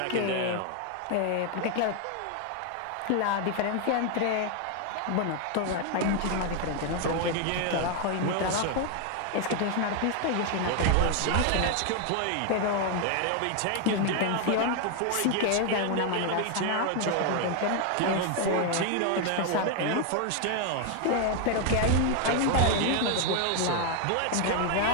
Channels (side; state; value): both; different; correlation 0.01